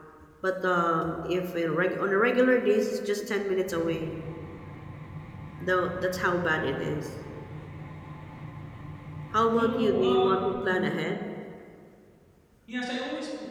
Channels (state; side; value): identical; both; correlation 1.00